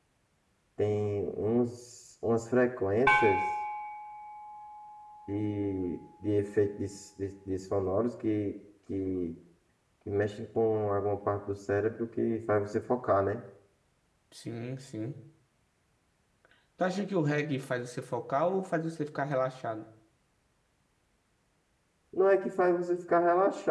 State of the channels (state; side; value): identical; both; correlation 1.00